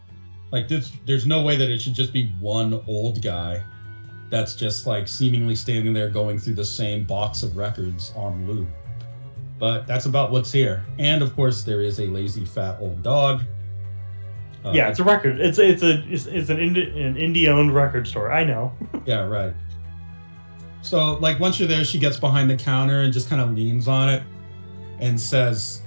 like this. There's no way that it should just be one old guy that's just like seemingly standing there going through the same box of records on loop. But that's about what's here. And of course, there is a lazy fat old dog. It's a record. It's an indie-owned record store. I know. Yeah, right. So like once you're there, she gets behind the counter and just kind of leans on it and says,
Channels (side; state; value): both; inverted; correlation -1.00